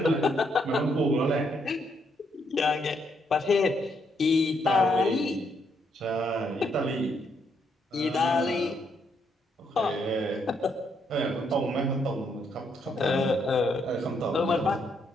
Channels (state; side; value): normal; both; correlation 0.75